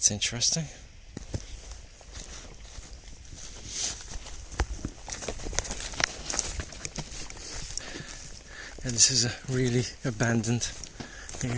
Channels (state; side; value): identical; both; correlation 1.00